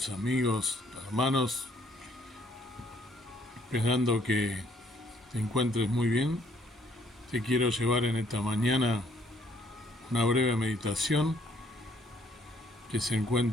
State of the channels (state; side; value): normal; both; correlation 0.65